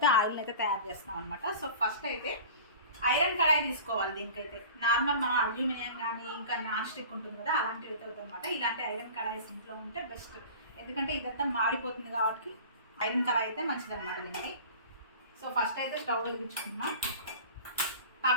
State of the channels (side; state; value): both; inverted; correlation -0.39